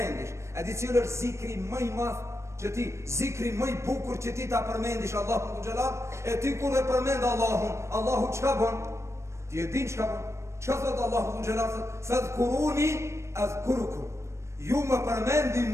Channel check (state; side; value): late; left; 0.13 ms